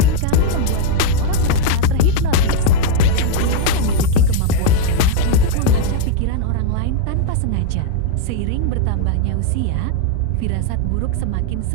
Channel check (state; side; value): different; both; correlation 0.00